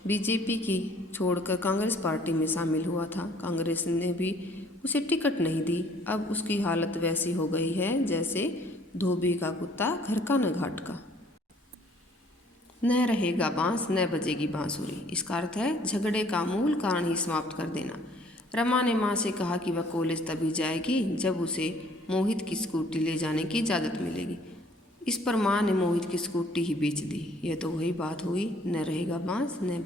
बीजेपी की छोड़कर कांग्रेस पार्टी में शामिल हुआ था। कांग्रेस ने भी उसे टिकट नहीं दी। अब उसकी हालत वैसी हो गई है जैसे धोबी का कुत्ता घर का न घाट का। न रहेगा बांस न बजेगी बांसुरी, इसका अर्थ है झगड़े का मूल कारण ही समाप्त कर देना। रमा ने माँ से कहा कि वह कॉलेज तभी जाएगी जब उसे मोहित की स्कूटी ले जाने की इजाज़त मिलेगी। इस पर माँ ने मोहित की स्कूटी ही बेच दी। यह तो वही बात हुई, न रहेगा बांस न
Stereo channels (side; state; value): both; normal; correlation 0.58